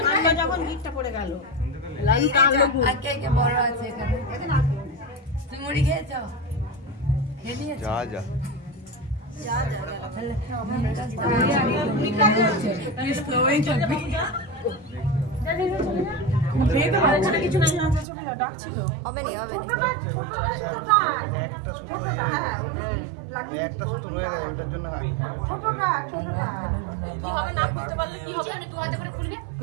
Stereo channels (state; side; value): drops out; left; at 18.1 s